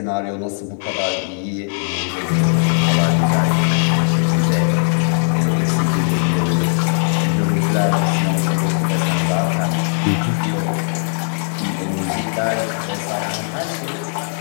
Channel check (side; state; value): right; silent; 57 dB below the other